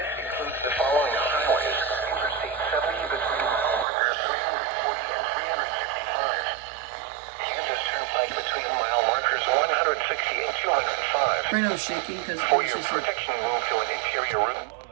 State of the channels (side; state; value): left; drops out; at 3.9 s